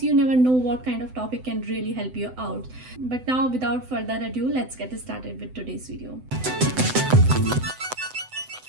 you never know what kind of topic can really help you out. But now without further ado, let's get started with today's video.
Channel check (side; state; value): left; late; 7.9 ms